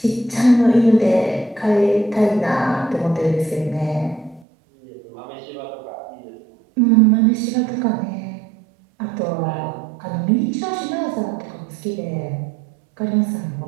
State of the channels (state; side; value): drops out; left; at 4.5 s